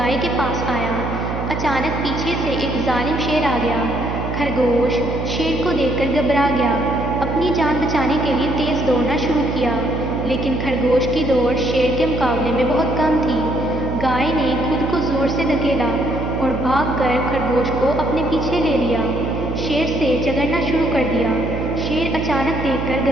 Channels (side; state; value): right; noise; hum, 4 dB below the sound